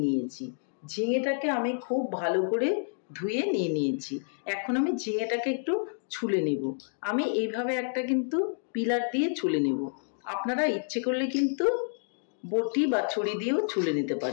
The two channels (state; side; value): silent; right; digital silence